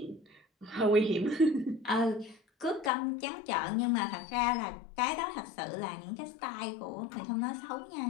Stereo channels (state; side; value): drops out; right; at 2.9 s